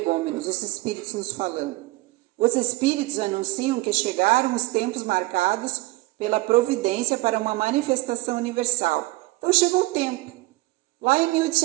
os espíritos nos falando. Os espíritos anunciam que chegaram os tempos marcados pela providência para uma manifestação universal. Então chegou o tempo, lá em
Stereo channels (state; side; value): quieter; left; 20.8 dB